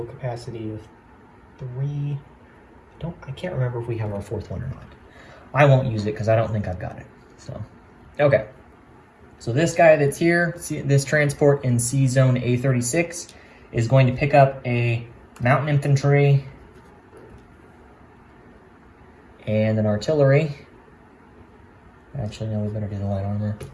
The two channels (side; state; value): both; identical; correlation 1.00